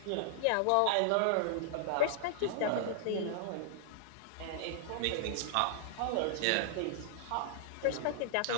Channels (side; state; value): both; different; correlation -0.01